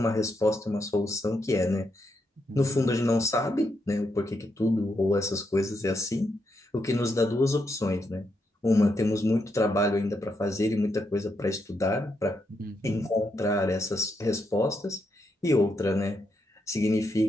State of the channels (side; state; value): both; normal; correlation 0.81